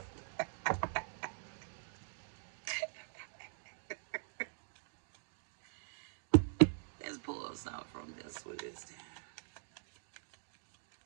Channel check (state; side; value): silent; left; digital silence